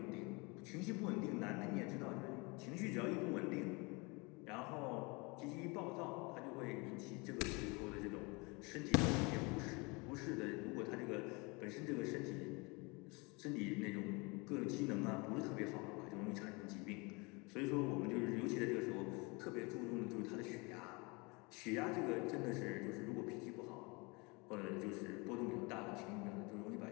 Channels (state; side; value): quieter; right; 27.8 dB